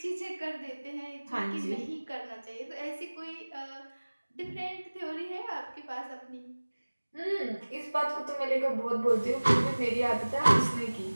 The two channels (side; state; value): both; inverted; correlation -1.00